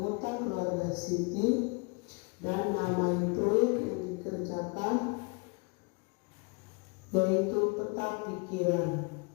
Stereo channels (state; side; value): quieter; right; 32.7 dB